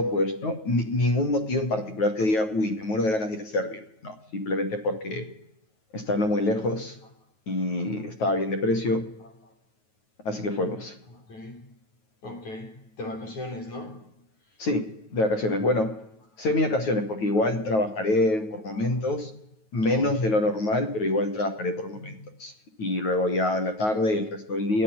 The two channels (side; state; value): right; late; 9.3 ms